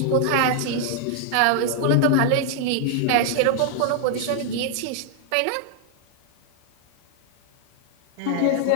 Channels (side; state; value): both; different; correlation 0.00